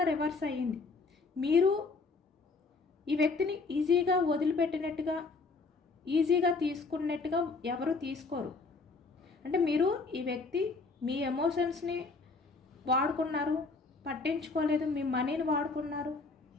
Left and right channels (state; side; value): quieter; right; 4.0 dB